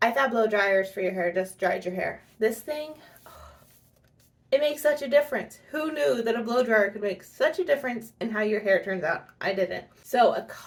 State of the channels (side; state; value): both; identical; correlation 1.00